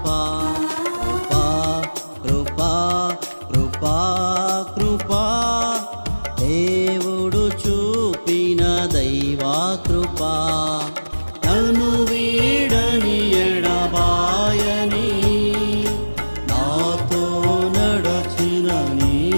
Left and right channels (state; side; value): inverted; both; correlation -1.00